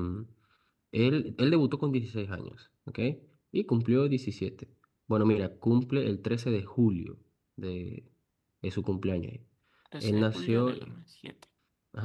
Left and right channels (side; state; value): both; identical; correlation 1.00